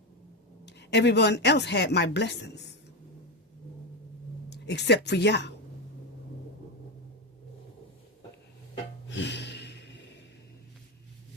Everyone else had my blessings. Except for y'all.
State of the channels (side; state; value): both; normal; correlation 0.13